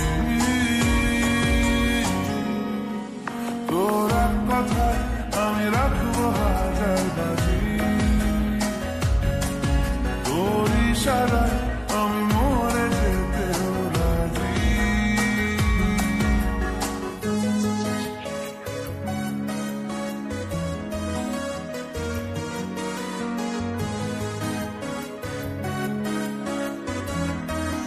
তোর এক কথায় আমি রাখবো হাজার বাজি, তোর ইশারায় আমি মরে যেতে রাজি।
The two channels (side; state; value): both; identical; correlation 1.00